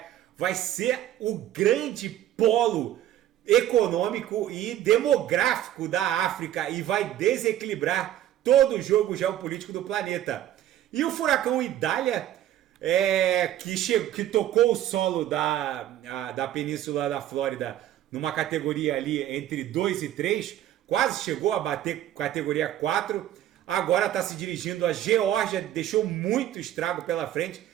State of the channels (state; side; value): quieter; left; 12.2 dB